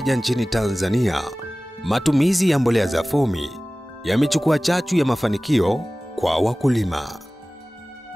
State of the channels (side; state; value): both; normal; correlation 0.98